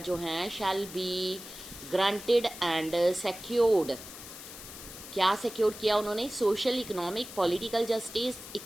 हैं shall be granted and secured. क्या सिक्योर किया उन्होंने? Social, economic, political justice,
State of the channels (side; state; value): left; noise; hiss, 13 dB below the sound